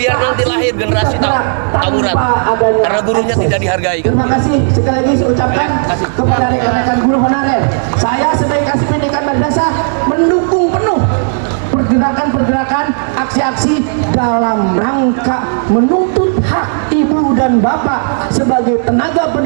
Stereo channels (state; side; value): silent; left; 61 dB below the other